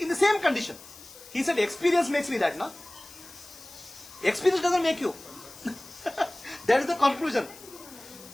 the same condition. He said experience makes me that, no? Experience doesn't make you. That is the conclusion.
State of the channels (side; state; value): left; noise; hiss, 19 dB below the sound